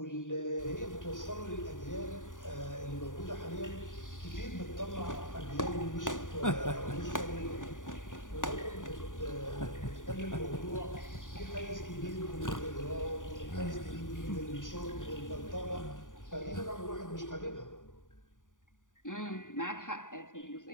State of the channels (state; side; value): late; right; 0.88 ms